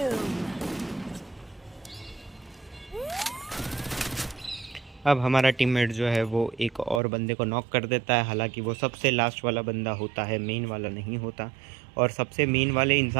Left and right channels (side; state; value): left; drops out; at 7.0 s